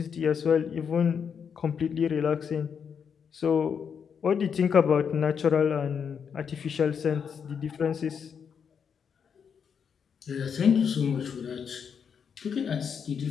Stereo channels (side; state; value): right; quieter; 7.0 dB